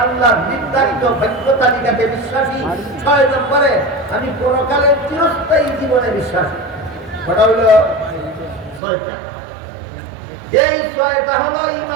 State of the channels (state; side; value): drops out; left; at 8.8 s